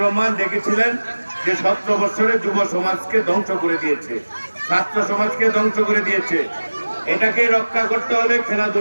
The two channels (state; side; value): inverted; both; correlation -1.00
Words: রহমান দেখেছিলেন যে 17 বছরে যুব সমাজকে ধ্বংস করে দিয়েছে, ছাত্র সমাজকে ধ্বংস করে দিয়েছে। এটাকে রক্ষা করতে হলে